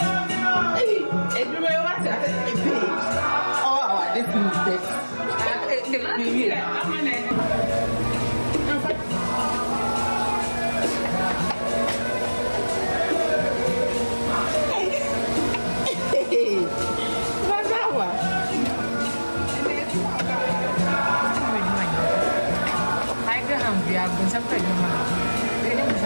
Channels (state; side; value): inverted; both; correlation -1.00